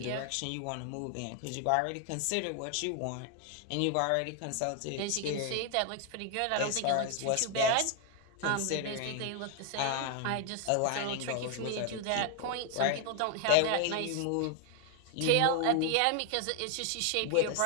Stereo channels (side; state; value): both; different; correlation 0.00